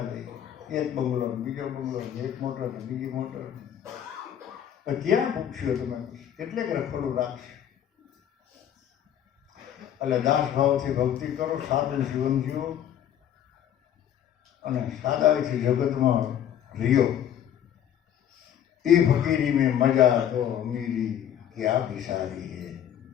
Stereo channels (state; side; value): quieter; right; 10.0 dB